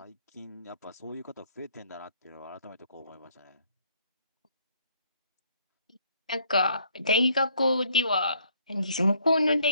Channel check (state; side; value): inverted; both; correlation -0.66